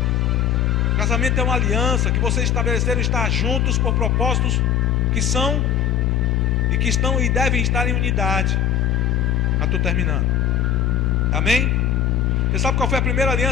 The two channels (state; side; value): quieter; right; 8.7 dB